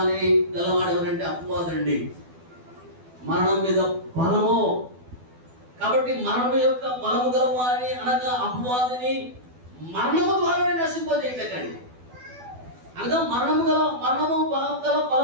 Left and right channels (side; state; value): left; late; 12 ms